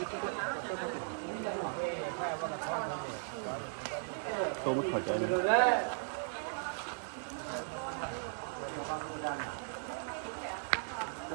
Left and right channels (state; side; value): silent; left; 53 dB below the other